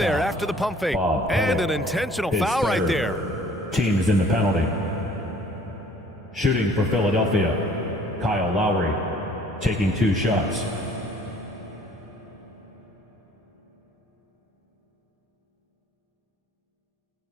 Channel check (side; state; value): both; normal; correlation 0.55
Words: after the pump fake. And an intentional foul right there. Team is in the penalty. Shooting for Philadelphia, Kyle Lowry, taking 2 shots.